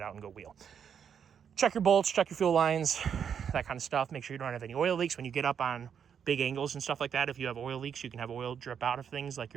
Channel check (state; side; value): quieter; left; 7.7 dB